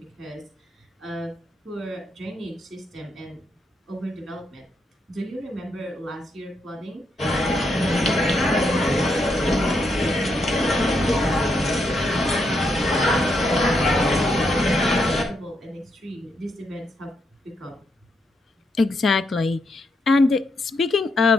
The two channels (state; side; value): normal; both; correlation 0.80